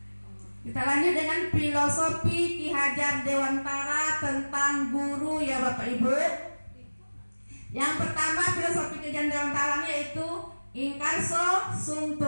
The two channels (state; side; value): inverted; both; correlation -1.00